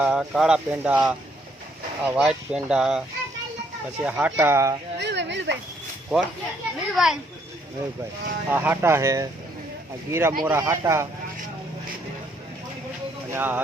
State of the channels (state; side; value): normal; both; correlation 0.69